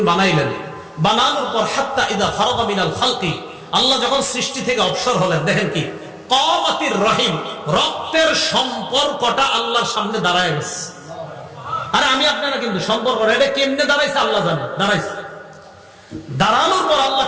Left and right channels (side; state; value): both; identical; correlation 1.00